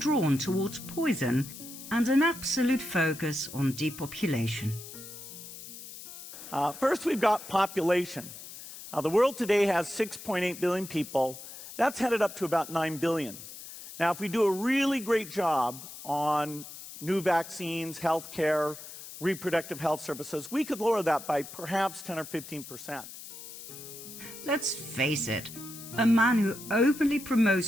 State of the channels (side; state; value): left; noise; hiss, 13 dB below the sound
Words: towards poison, and an absolute focus on depopulation. First, we've got population. The world today has 6.8 billion people. That's headed up to about 9 billion. Now, if we do a really great job on new vaccines, healthcare, reproductive health services, we could lower that by perhaps 10 or 15%. Let's face it, a man who openly